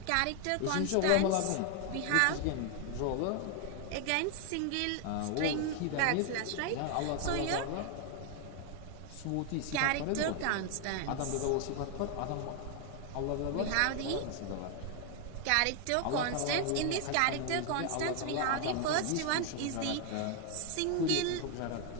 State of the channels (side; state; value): both; different; correlation 0.00